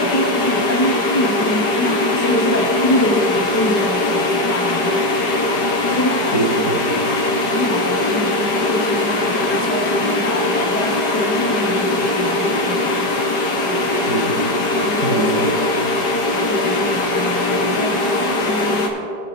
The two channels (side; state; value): right; late; 5.1 ms